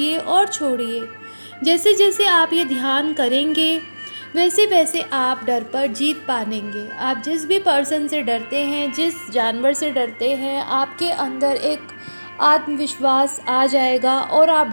और छोड़िए। जैसे जैसे आप ये ध्यान करेंगे, वैसे वैसे आप डर पर जीत पाएंगे। आप जिस भी पर्सन से डरते हैं, जिस जानवर से डरते हैं, आपके अंदर एक आत्मविश्वास आ जाएगा और आप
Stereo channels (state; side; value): inverted; both; correlation -1.00